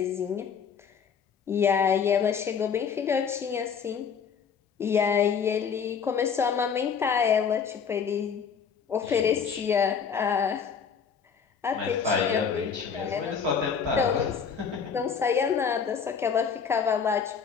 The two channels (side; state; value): right; quieter; 6.7 dB